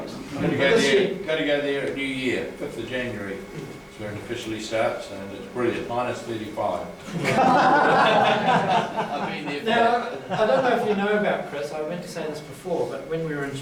to go there at New Year, 5th of January. It's where it officially starts, and it's brilliant, minus 35. I've been there for Now, I don't know if you know about Chris. I meant to say this before, but when we were in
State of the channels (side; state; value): both; identical; correlation 1.00